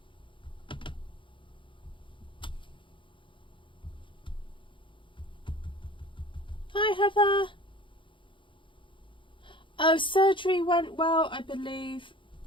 Hi Heather. Oh, surgery went well, I believe,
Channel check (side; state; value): right; late; 0.24 ms